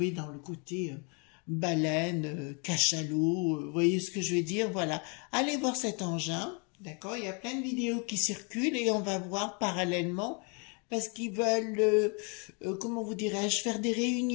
dans le côté baleine, cachalot, vous voyez ce que je veux dire? Voilà. Allez voir cet engin, d'accord? Il y a plein de vidéos qui circulent et on va voir parallèlement, parce qu'ils veulent, comment vous dirais-je, faire des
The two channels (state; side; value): quieter; right; 35.0 dB